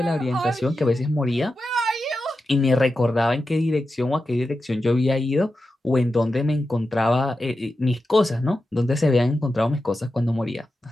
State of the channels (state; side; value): normal; both; correlation 0.90